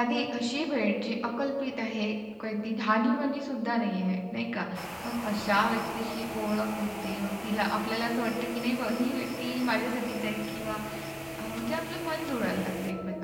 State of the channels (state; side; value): identical; both; correlation 1.00